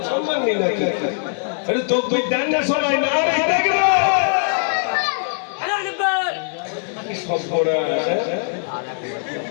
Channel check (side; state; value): right; silent; digital silence